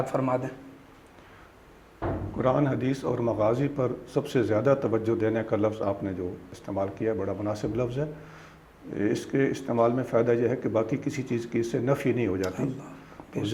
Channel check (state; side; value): identical; both; correlation 1.00